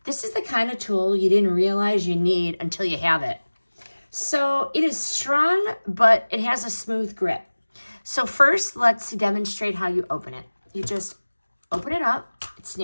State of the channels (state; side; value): inverted; both; correlation -1.00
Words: This is the kind of tool you didn't realize you need until you have it. So it is strong, but it has a smooth grip. So first, let's demonstrate how you open it. You just open it up, it